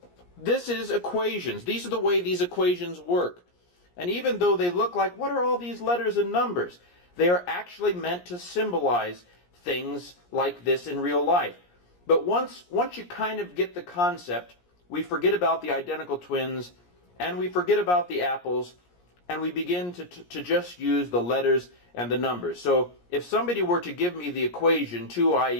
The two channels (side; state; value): right; late; 17 ms